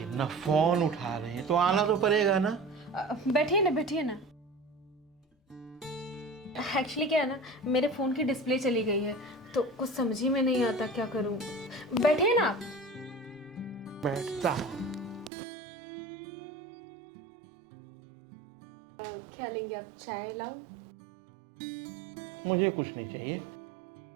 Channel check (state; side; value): drops out; left; at 15.3 s